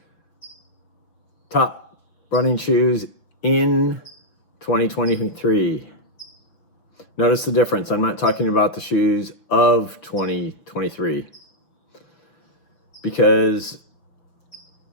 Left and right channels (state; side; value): late; right; 6.0 ms